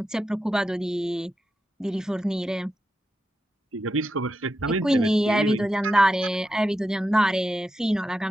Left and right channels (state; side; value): normal; both; correlation 0.88